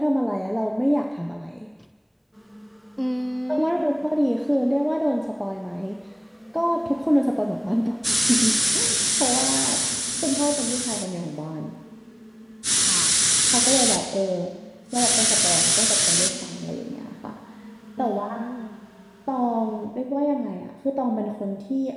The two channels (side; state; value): both; identical; correlation 1.00